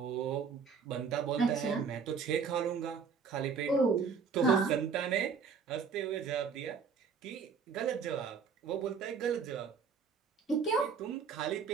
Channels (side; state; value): left; quieter; 5.9 dB